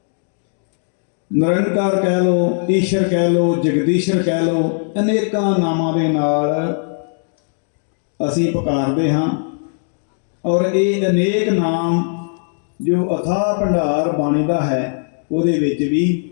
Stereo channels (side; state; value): right; silent; digital silence